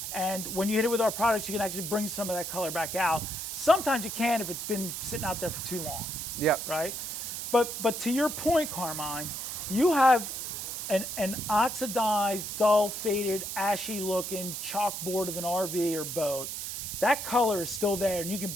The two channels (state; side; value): noise; right; hiss, 5 dB below the sound